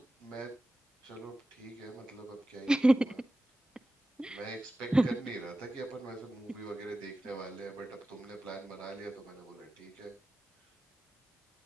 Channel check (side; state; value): both; normal; correlation 0.94